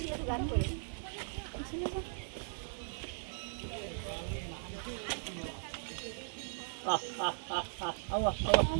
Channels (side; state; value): left; silent; digital silence